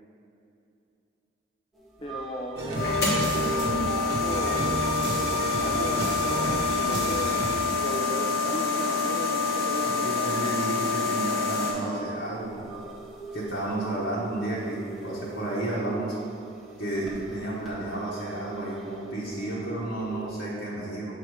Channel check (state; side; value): normal; both; correlation 0.24